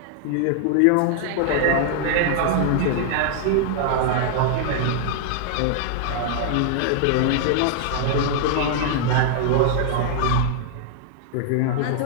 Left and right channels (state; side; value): different; both; correlation -0.01